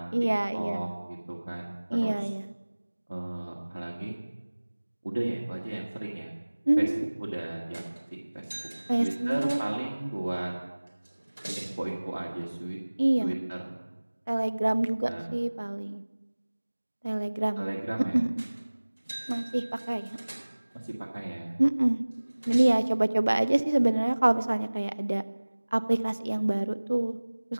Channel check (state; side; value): inverted; both; correlation -1.00